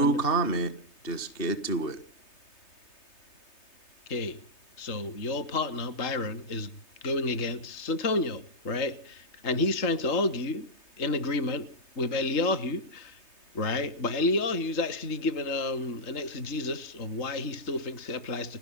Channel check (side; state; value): right; late; 3.3 ms